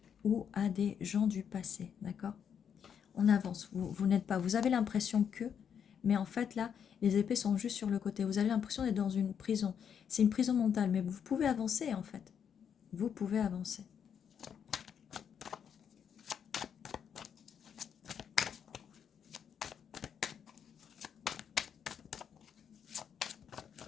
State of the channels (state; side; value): quieter; right; 7.9 dB